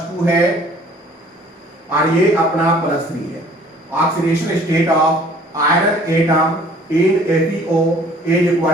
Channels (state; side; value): normal; both; correlation 0.54